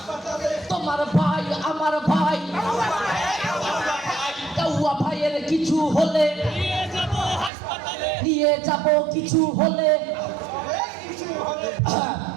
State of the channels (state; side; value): drops out; left; at 7.5 s